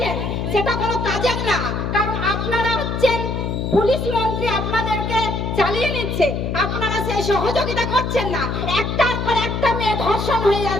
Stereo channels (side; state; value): left; noise; hum, 2 dB below the sound